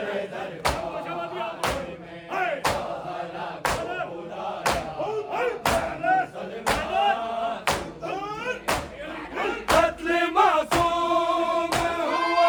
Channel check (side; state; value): both; identical; correlation 1.00